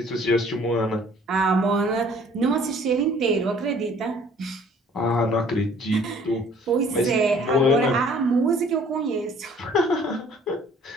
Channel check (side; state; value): both; normal; correlation 0.55